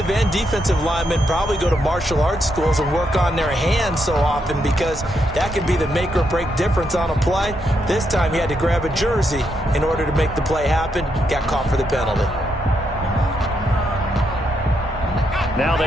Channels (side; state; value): both; normal; correlation 0.80